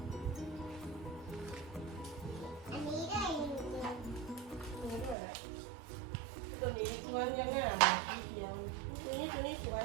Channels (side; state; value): left; drops out; at 5.2 s